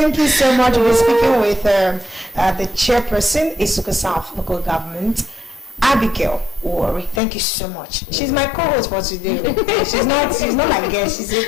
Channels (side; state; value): right; drops out; at 7.2 s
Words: you so much. We're speaking with the chairperson, Isuka South Local Government, Abigail Owori. Thank you so much. She's my co-host for today. She's not my guest.